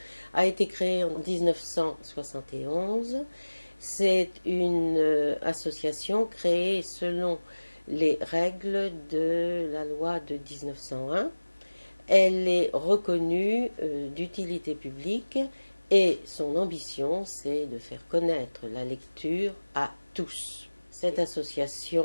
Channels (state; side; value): inverted; both; correlation -1.00